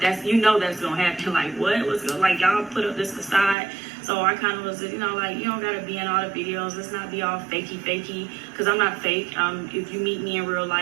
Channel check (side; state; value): left; drops out; at 3.6 s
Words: that's, you know, that's gonna happen. Like, what? What's going, like, y'all put up this facade. So I kind of was, you know, like, you don't gotta be in all the videos. Let's not be all fakey, because I'm not fake. If you meet me in real